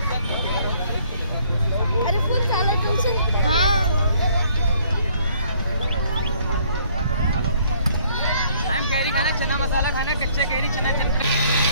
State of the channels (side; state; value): both; inverted; correlation -0.62